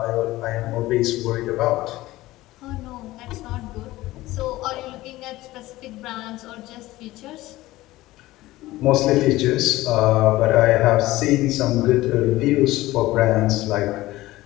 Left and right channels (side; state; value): right; quieter; 17.5 dB